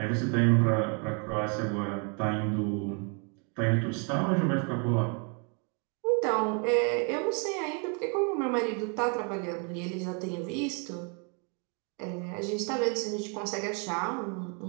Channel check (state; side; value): quieter; left; 37.2 dB